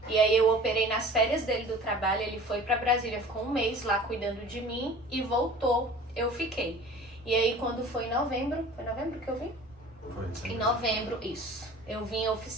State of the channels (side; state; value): both; normal; correlation 0.44